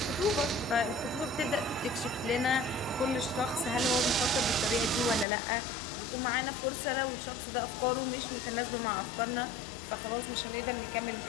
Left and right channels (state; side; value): drops out; right; at 5.2 s